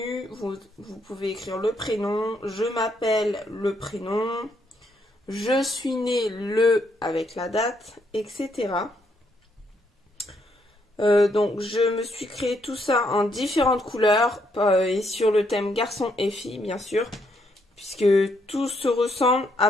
vous pouvez écrire le prénom, je m'appelle le prénom, je suis né le avec la date, etc. Donc je me suis créé tout ça en différentes couleurs et sur le thème garçon et fille bien sûr, puisque tout se ressemble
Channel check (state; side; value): normal; both; correlation 0.74